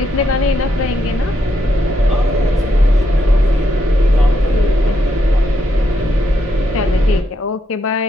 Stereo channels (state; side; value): normal; both; correlation 0.79